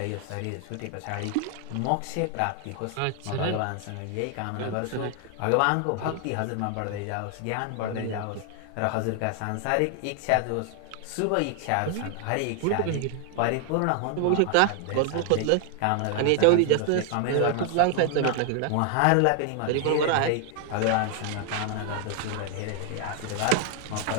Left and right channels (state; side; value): different; both; correlation 0.00